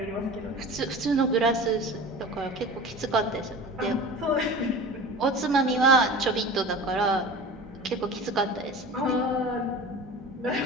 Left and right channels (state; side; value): normal; both; correlation 0.36